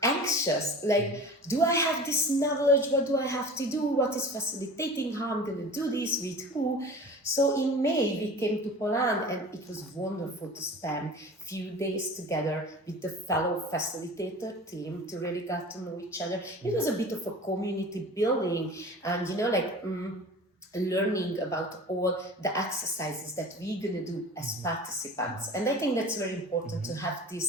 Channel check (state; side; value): normal; both; correlation 0.38